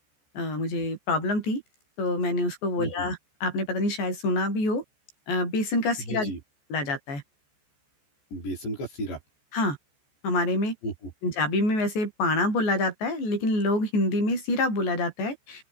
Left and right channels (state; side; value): late; right; 14 ms